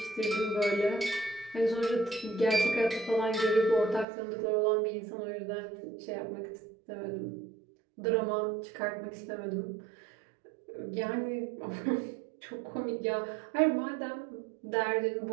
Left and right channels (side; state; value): left; drops out; at 4.0 s